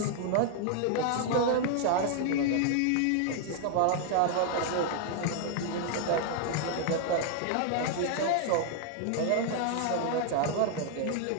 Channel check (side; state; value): both; different; correlation 0.00